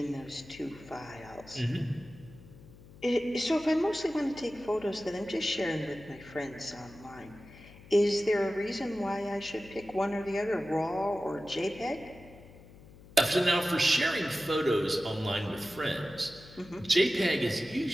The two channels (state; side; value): noise; left; hum, 20 dB below the sound